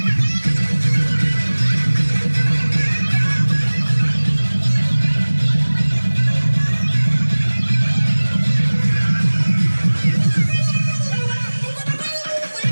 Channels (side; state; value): both; inverted; correlation -1.00